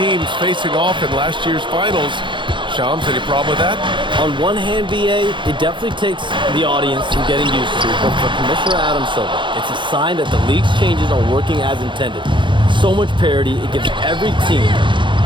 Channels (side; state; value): left; late; 0.23 ms